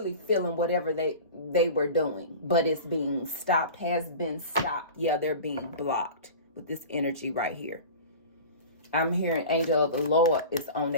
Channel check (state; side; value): inverted; both; correlation -0.36